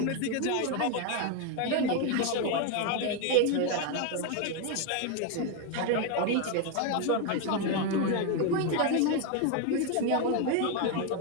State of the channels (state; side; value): different; both; correlation 0.01